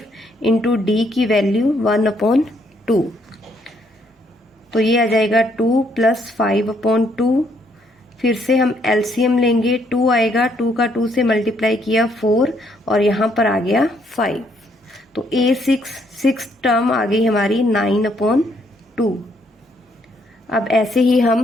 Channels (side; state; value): both; normal; correlation 0.70